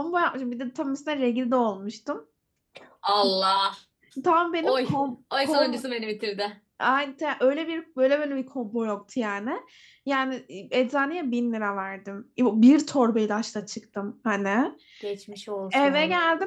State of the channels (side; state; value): both; identical; correlation 1.00